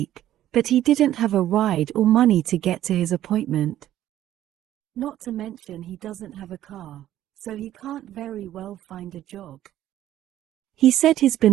but he didn't have a ride or money to get to his appointment. Not to mention he doesn't have a car, so he can't very well find a job. He said he's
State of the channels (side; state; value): left; quieter; 12.7 dB